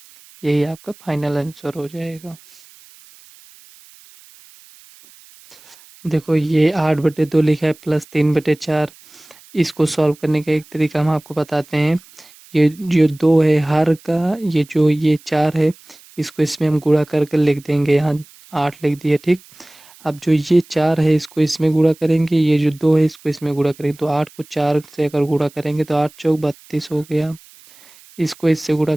यही आपका फाइनल आंसर हो जाएगा। देखो ये 8/2 लिखा है, प्लस 3/4। इसको सॉल्व करने का एक तरीका हम आपको बताते हैं। ये जो 2 है हर का, ये जो ये 4 है इसको इसमें हम गुणा करके लिख देंगे, यहाँ 8 लिख दिया। ठीक, अब जो ये 4 है इसको इसमें गुणा करेंगे, ये जो 2 है इसको इसमें गुणा करेंगे, तो 8 को 4 से अगर गुणा करेंगे तो 8 चौक 32 हो गया। इसको इससे गुणा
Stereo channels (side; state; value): right; noise; hiss, 25 dB below the sound